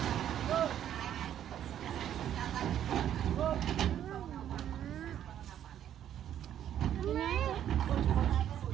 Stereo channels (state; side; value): quieter; left; 10.5 dB